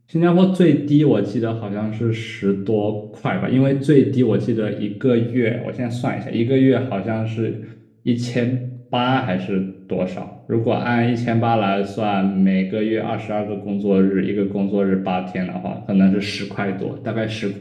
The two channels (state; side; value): identical; both; correlation 1.00